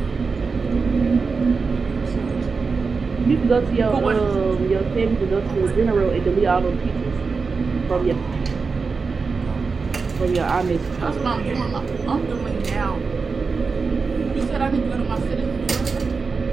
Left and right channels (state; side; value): quieter; left; 4.7 dB